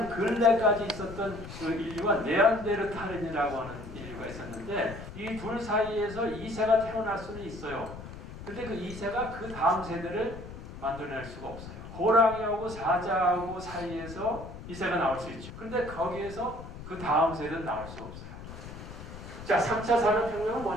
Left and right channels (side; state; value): left; noise; rumble, 12 dB below the sound